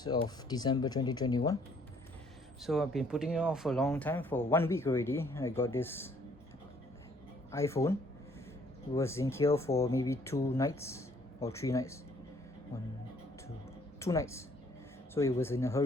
of December 2021. So I've been putting it off for a long time, for 1 week already. I got this iPhone. It was in here for maybe 2 nights or 3 nights. One, two, 2 nights. So it was in a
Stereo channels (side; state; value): both; normal; correlation 0.62